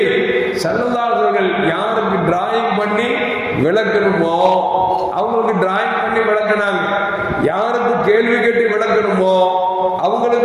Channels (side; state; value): both; identical; correlation 1.00